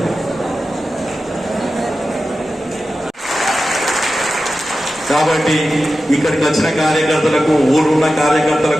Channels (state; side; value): normal; both; correlation 0.93